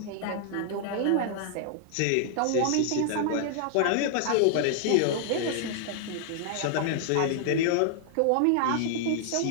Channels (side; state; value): both; different; correlation -0.01